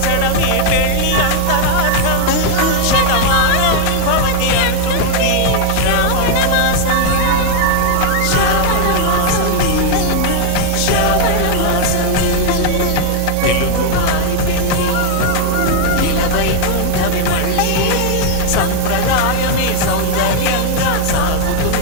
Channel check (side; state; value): both; different; correlation 0.00